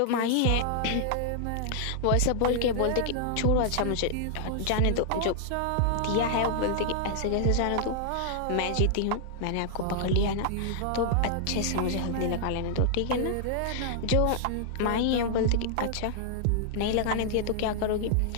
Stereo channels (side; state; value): both; different; correlation -0.01